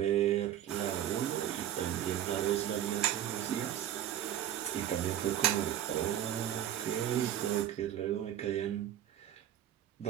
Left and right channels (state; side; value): quieter; left; 11.1 dB